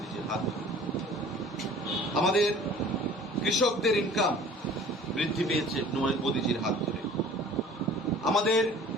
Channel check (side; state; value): both; normal; correlation 0.47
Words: হাত ধরে। আমাদের কৃষকদের ইনকাম বৃদ্ধি পেয়েছে মোদীজির হাত ধরে। আমাদের